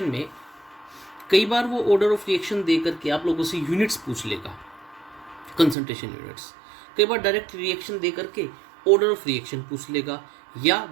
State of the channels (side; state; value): left; drops out; at 5.8 s